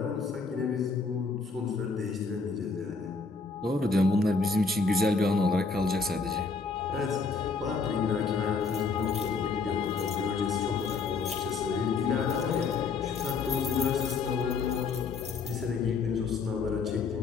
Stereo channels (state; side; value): quieter; right; 4.6 dB